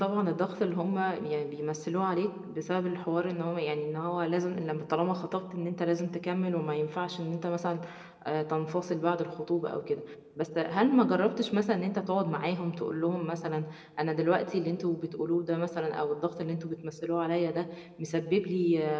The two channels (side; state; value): both; identical; correlation 1.00